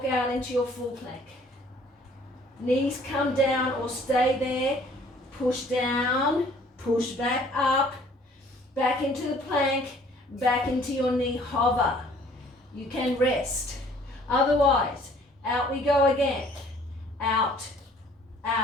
out into your full plank. Knees come down or stay there. Push down, push back up, back into the plank, back into your knee hover. You can rest. Otherwise, out we go again. Out,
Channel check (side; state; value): both; normal; correlation 0.56